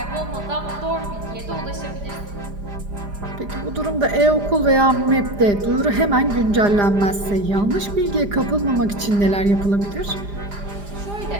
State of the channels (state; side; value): late; left; 4.9 ms